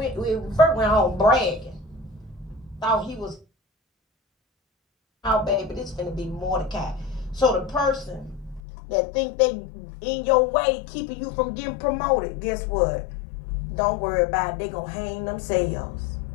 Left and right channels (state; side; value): drops out; right; at 8.6 s